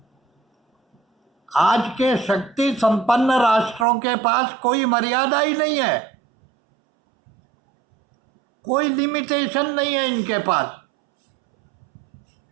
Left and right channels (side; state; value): left; drops out; at 3.9 s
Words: आज के शक्ति संपन्न राष्ट्रों के पास कोई मर्यादा ही नहीं है, कोई लिमिटेशन नहीं है इनके पास।